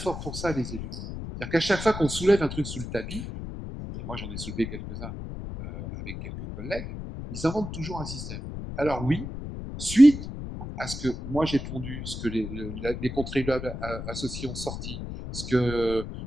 pour ça, les élus. C'est-à-dire qu'à chaque fois qu'on soulève un truc sous le tapis, et moi j'en ai soulevé quelques-uns avec quelques collègues, ils inventent toujours un système. Alors oui, suite à ce que moi j'ai pondu, ce que les contribuables associés ont sorti, ce que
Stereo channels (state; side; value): noise; left; rumble, 8 dB below the sound